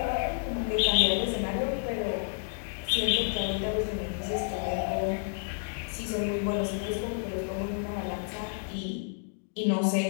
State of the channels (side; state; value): right; silent; digital silence